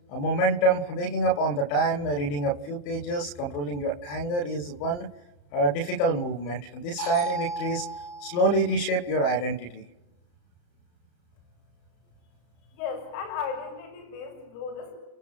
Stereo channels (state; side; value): late; right; 34 ms